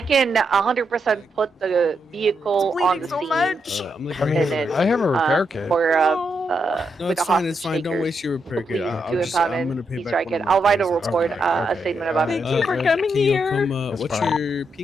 can 100% put the vehicle on the scene. I mean, I have a repair kit. For no, it's fine. It's fine. Don't waste your repair kit. I'm gonna pay back. I'll write a report, a statement about it. Thank you for coming here. What's your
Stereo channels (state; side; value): normal; both; correlation 0.81